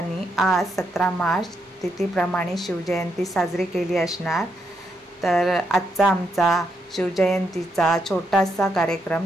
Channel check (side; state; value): both; normal; correlation 0.80